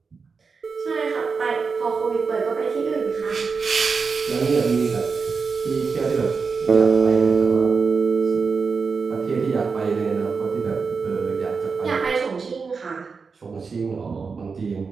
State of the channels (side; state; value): left; quieter; 5.0 dB